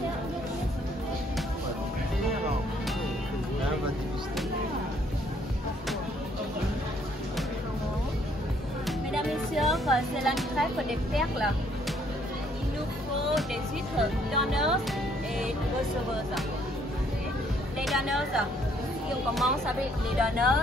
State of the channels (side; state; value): both; normal; correlation 0.65